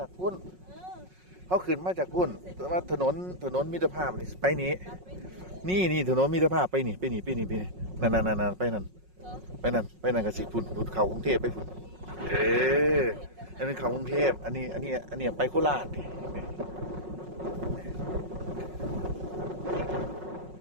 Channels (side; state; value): left; late; 5.4 ms